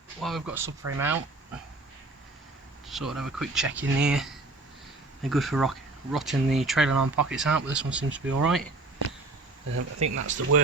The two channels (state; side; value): quieter; left; 3.1 dB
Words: while we've got subframe out, sort of have a quick check in here. They're good for rotting the trailer arm pockets out, but this one seems to be alright. I think that's the